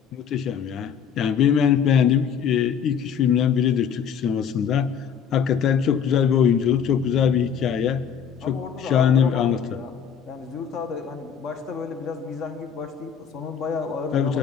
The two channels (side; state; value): right; quieter; 7.7 dB